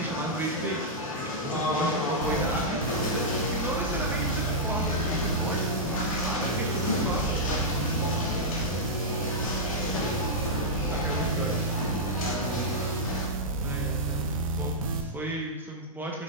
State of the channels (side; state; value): both; normal; correlation -0.08